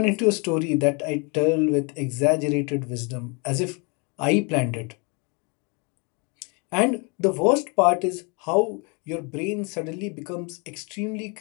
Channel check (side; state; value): right; quieter; 32.6 dB